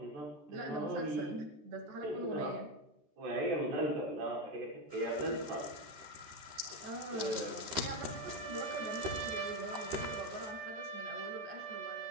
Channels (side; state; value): left; late; 13 ms